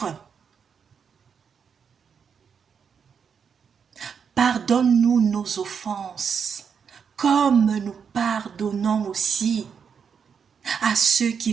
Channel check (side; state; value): left; quieter; 6.7 dB